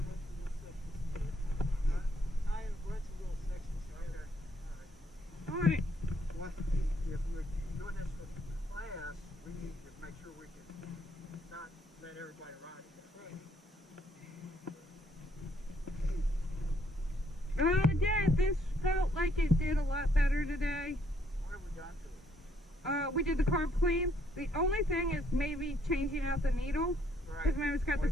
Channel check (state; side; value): normal; both; correlation 0.69